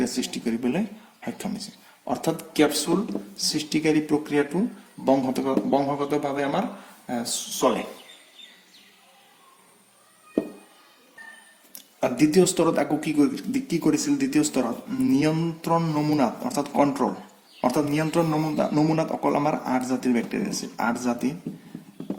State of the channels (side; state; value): both; identical; correlation 1.00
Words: সৃষ্টি কৰিবলৈ সক্ষম হৈছে অৰ্থাৎ ক্যাপসুল সৃষ্টিকাৰী প্ৰক্ৰিয়াটো বংশগতভাৱে আমাৰ চলে আৰ দ্বিতীয় স্তৰত আকৌ কি কৰিছিল দ্বিতীয় স্তৰত নিয়ন্ত্ৰণ নমুনাত অৰ্থাৎ কন্ট্ৰোল অৰ্থাৎ নিয়ন্ত্ৰণ নমুনাত অকল আমাৰ 8 জাতিৰ ব্যাকটেৰিয়া আছে 8